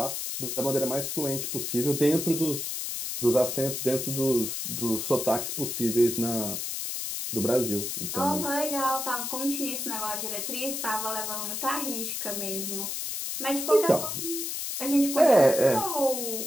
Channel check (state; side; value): noise; left; hiss, 3 dB below the sound